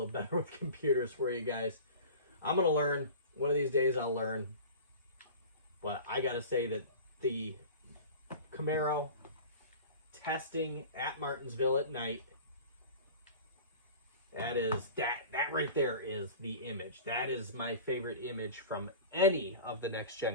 better with computers for you guys. I'm gonna learn. One of these days I'll learn. But I gotta say that the Camaro testing at Martinsville at night, that right there is the image. That is my favorite image from any of the next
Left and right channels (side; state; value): both; inverted; correlation -0.37